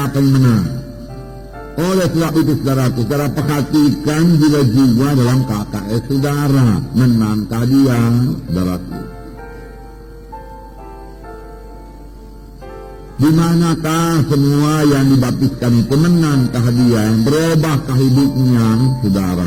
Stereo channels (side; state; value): both; identical; correlation 1.00